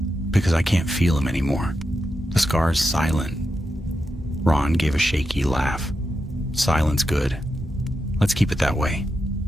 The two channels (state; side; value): normal; both; correlation 0.87